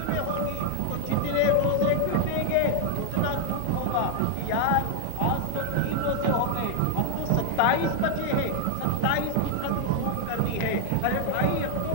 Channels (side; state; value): both; different; correlation 0.01